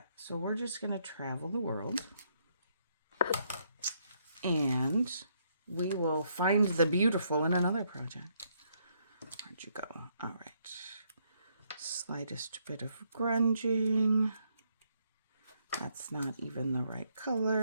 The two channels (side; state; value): both; inverted; correlation -0.73